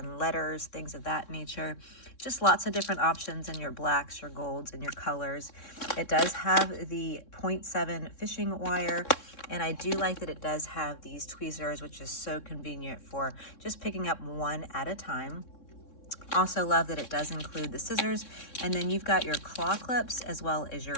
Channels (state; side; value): late; right; 3.6 ms